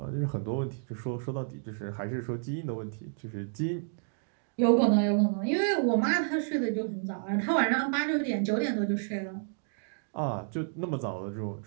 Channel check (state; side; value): silent; left; digital silence